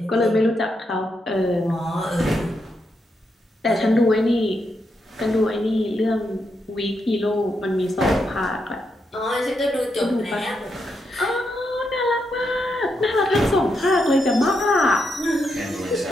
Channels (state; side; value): normal; both; correlation 0.82